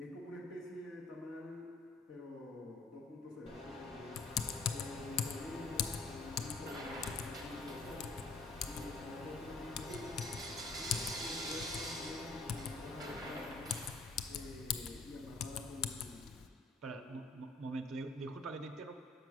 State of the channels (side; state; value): right; quieter; 3.4 dB